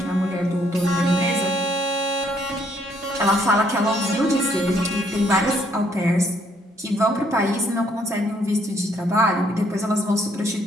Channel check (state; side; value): normal; both; correlation 0.67